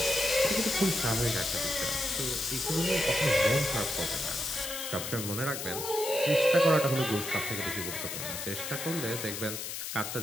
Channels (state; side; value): noise; left; hiss, 6 dB below the sound